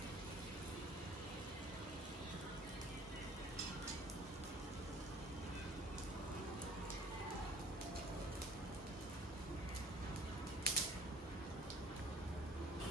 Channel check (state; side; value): normal; both; correlation 0.52